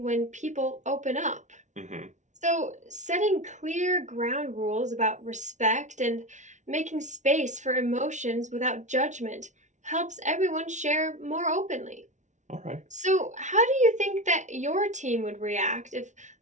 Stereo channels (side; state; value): left; late; 0.35 ms